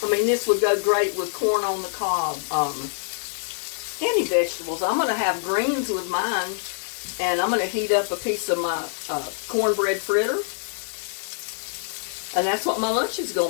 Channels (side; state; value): right; silent; 62 dB below the other